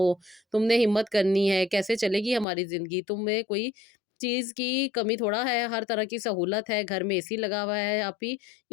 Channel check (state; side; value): drops out; right; at 2.5 s